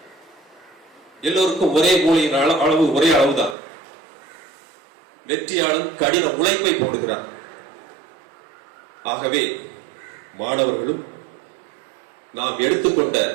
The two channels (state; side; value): drops out; left; at 3.6 s